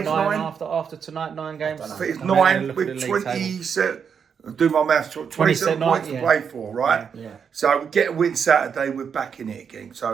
9. After tonight, 9 games. I think it's 9 with 20. Do my maths. 27 points to play for, right? Yeah. So we get a win Saturday. We're back in it again.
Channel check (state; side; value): quieter; left; 6.9 dB